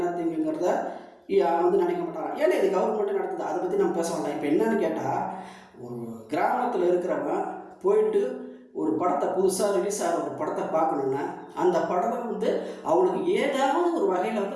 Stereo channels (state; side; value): identical; both; correlation 1.00